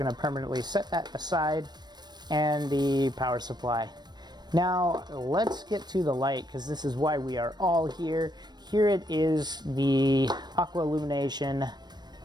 to permanently set that aside, and the power supply. Now let's get to the light, because this is why we are all here. Here it is, the Aqua Illumination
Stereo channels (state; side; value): late; left; 0.20 ms